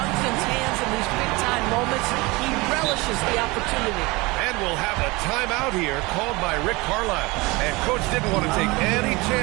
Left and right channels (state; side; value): quieter; left; 23.8 dB